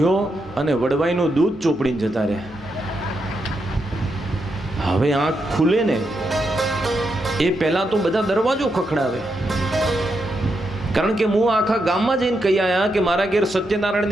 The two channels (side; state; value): both; normal; correlation 0.83